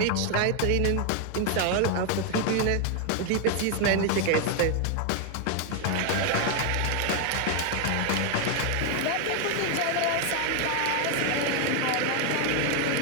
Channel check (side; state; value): both; different; correlation 0.01